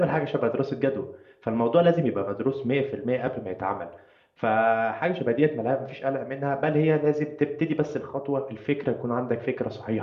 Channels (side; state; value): both; identical; correlation 1.00